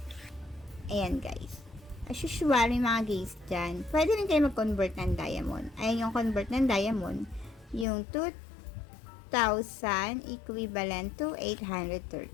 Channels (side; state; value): right; drops out; at 7.9 s